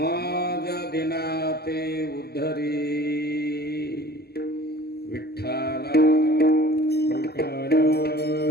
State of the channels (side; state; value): right; late; 0.46 ms